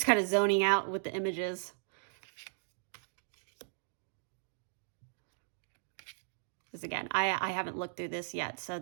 kind of zoning out with the images. Because again, I haven't looked through this yet. So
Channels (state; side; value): silent; left; digital silence